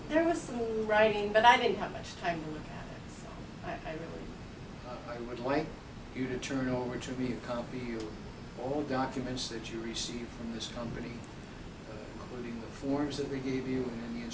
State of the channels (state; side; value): identical; both; correlation 1.00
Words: there was some writing, but I didn't have much time to look at it, so I really... I would like you to turn over to me a copy of all documents that you received from this company, including the forms that they gave you and any